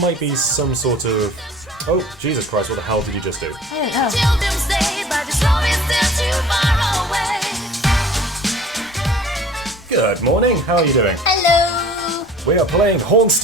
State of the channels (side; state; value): both; normal; correlation 0.48